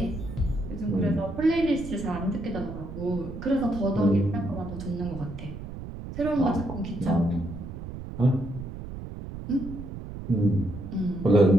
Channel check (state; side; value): noise; right; rumble, 10 dB below the sound